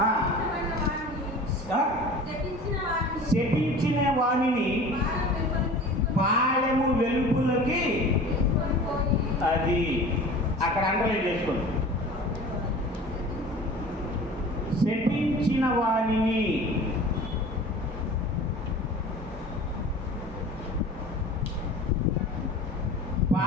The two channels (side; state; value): both; normal; correlation 0.40